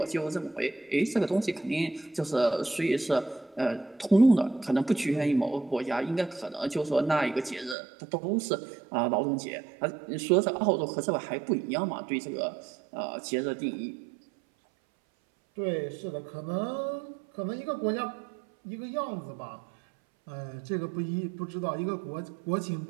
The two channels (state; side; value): drops out; left; at 7.8 s